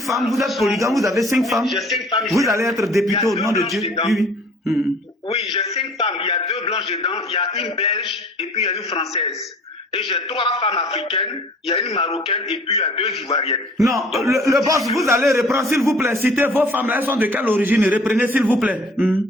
vous êtes polygame, vous avez 5 femmes. J'ai 5 femmes. Vous allez être député au nom de Dieu. Oui, j'ai 5 femmes. Il y a 2 blanches dedans, il y a une belge et puis il y a une française. Et j'ai 3 femmes africaines, il y a une marocaine et puis il y a 2 ivoiriennes. Non, le boss, vous allez reprendre, s'il vous plaît. Citez vos femmes, elles sont de quelle origine? Reprenez, s'il vous plaît.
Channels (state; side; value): normal; both; correlation 0.51